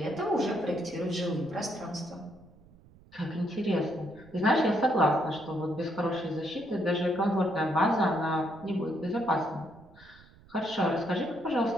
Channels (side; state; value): right; noise; rumble, 25 dB below the sound